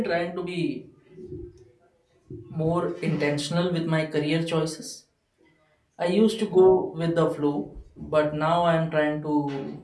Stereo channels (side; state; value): both; identical; correlation 1.00